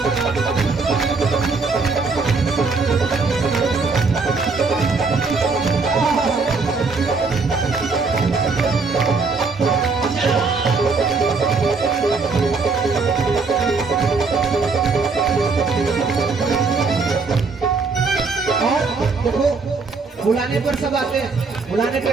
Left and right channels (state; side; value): quieter; left; 4.4 dB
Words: और देखो बुलाने पर सब आते हैं, बुलाने पे